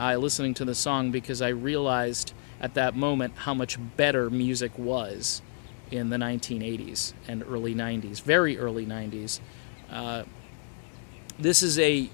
listening to the song because I realized at that moment how much better music was in the 1980s and early 90s, very early 90s. This is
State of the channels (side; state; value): right; silent; 59 dB below the other